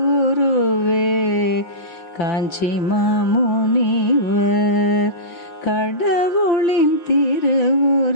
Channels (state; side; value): late; right; 5.4 ms